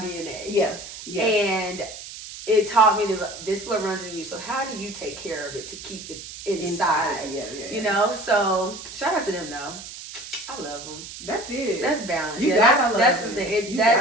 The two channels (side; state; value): right; noise; hiss, 12 dB below the sound